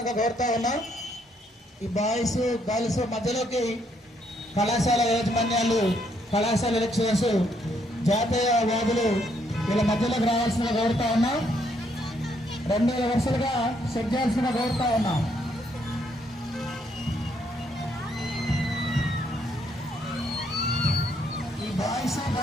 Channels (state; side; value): normal; both; correlation 0.72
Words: కోరుతా ఉన్నాం. ఈ బాయ్స్ గర్ల్స్ మధ్యలోకి కళాశాల యాజమాన్యాలు, కళాశాల లెక్చరర్స్, జాతీయ వాదులు వీళ్ళ మధ్యలోకి రావాల్సిందిగా కోరుతా ఉన్నాం. 2 వరుసలుగా సెట్ చేయాల్సిందిగా కోరుతా ఉన్నాం. ఈ బాయ్స్